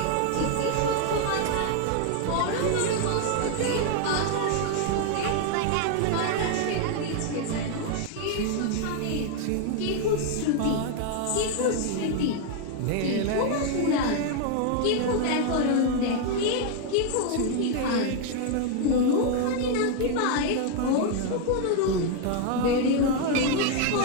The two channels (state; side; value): different; both; correlation 0.00